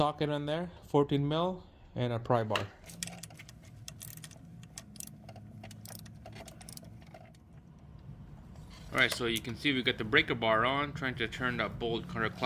in there, 14mm, and a pry bar. Alright, so you can see we got the breaker bar on, trying to turn that bolt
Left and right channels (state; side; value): identical; both; correlation 1.00